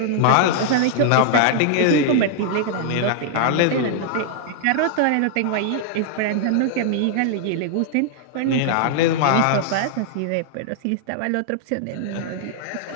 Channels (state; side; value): different; both; correlation -0.01